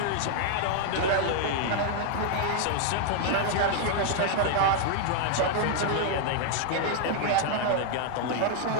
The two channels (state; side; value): different; both; correlation 0.00